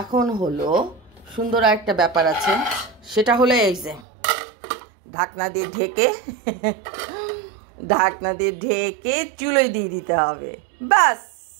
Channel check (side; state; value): left; drops out; at 4.0 s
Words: এখন হলো সুন্দর একটা ব্যাপার আছে, সেটা হলো এই যে ঢাকনা দিয়ে ঢেকে চুলোয় দিয়ে দিতে হবে, ব্যাস